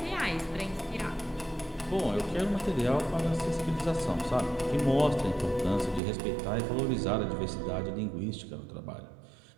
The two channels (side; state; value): left; drops out; at 6.0 s